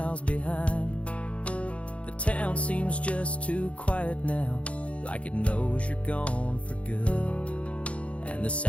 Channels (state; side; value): late; right; 0.063 ms